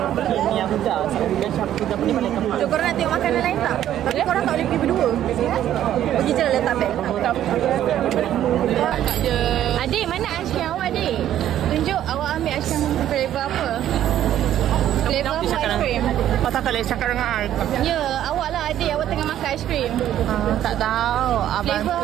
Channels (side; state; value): left; quieter; 11.6 dB